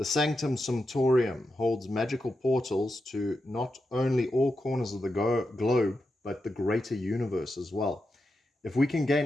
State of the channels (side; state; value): both; normal; correlation 0.87